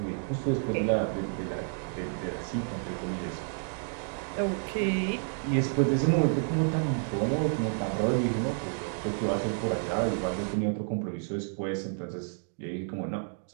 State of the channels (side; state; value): left; silent; 55 dB below the other